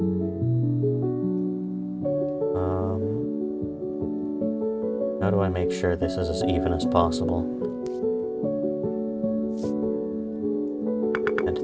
How do I make sure this is as even as possible?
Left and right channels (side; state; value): both; identical; correlation 1.00